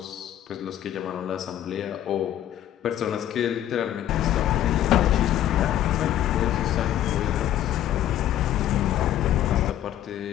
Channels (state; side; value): quieter; right; 12.0 dB